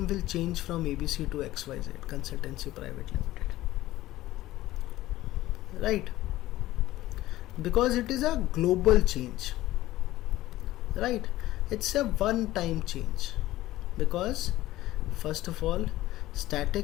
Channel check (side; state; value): right; quieter; 16.0 dB